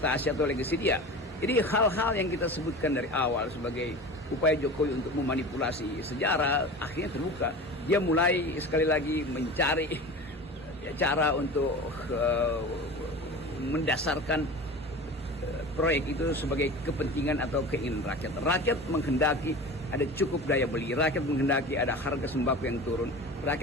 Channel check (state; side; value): normal; both; correlation 0.34